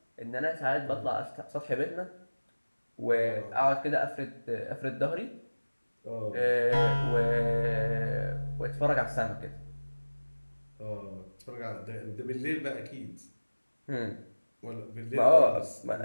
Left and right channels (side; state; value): both; inverted; correlation -1.00